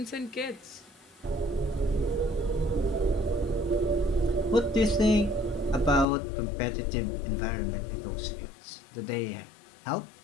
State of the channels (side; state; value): right; drops out; at 6.1 s